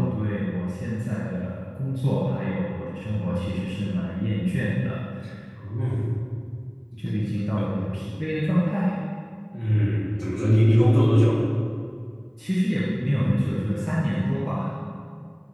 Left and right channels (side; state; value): both; identical; correlation 1.00